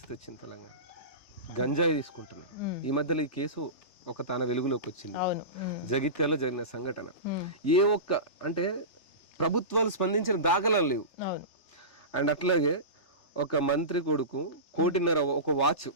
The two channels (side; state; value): right; late; 3.4 ms